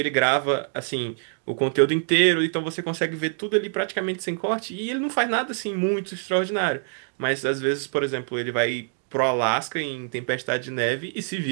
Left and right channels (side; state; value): left; silent; digital silence